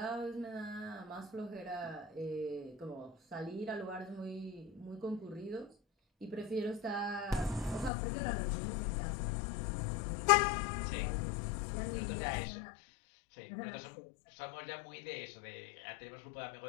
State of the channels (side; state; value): right; drops out; at 7.9 s